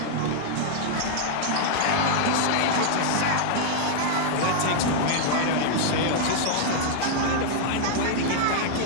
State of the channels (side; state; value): both; different; correlation -0.01